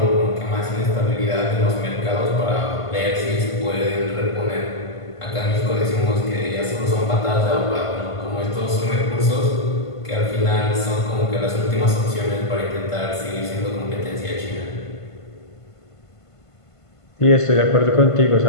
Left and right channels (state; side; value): late; right; 1.5 ms